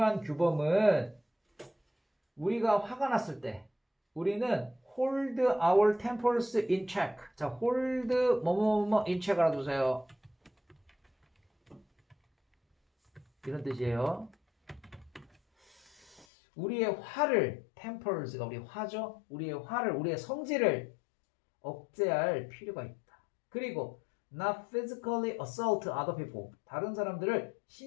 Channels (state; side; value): drops out; right; at 16.2 s